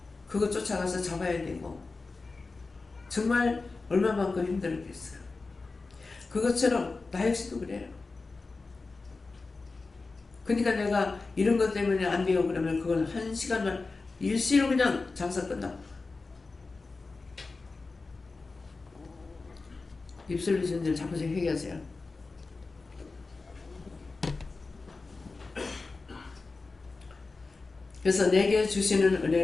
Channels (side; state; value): right; quieter; 3.8 dB